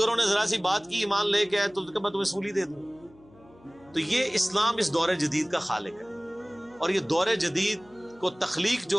نے ذرا سی بات کی، ایمان لے کے آئے تو میں تمہیں سولی دے دوں. تو یہ اسلام اس دور جدید کا خالق ہے. اور یہ دور جدید کو تخلیق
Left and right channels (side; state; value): left; noise; hum, 27 dB below the sound